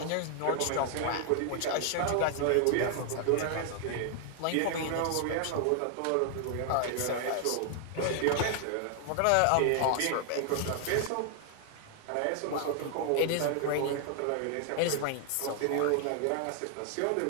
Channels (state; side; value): different; both; correlation 0.00